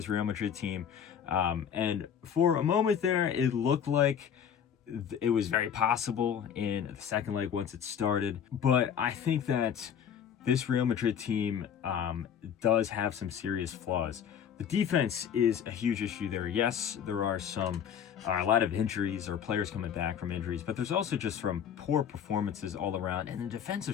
Real Madrid team. And for a moment there, it looked like it was very possible in the second leg once it started, but I think that this Real Madrid team does have some serious flaws. The defense is a huge issue there. Yes, there are a lot of injuries or players coming back from injuries, but there's also just from poor performances all around, and the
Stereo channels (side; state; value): right; quieter; 8.2 dB